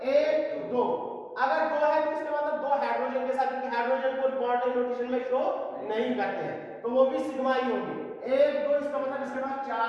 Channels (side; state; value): both; identical; correlation 1.00